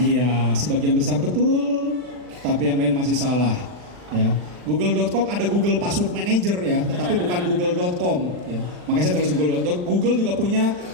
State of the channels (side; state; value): left; late; 40 ms